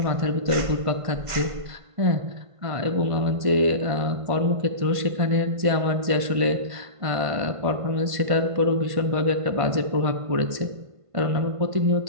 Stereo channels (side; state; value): left; late; 1.5 ms